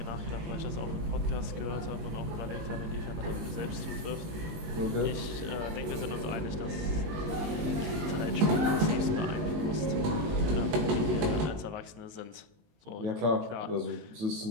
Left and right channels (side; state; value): left; late; 19 ms